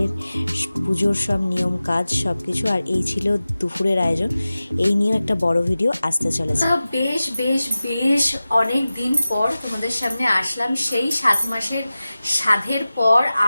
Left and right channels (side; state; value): both; inverted; correlation -0.96